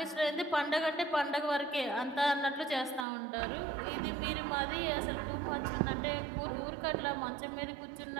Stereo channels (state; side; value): drops out; left; at 3.1 s